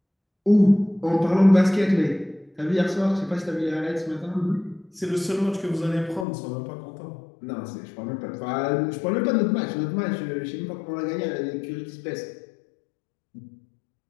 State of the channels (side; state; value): right; drops out; at 6.2 s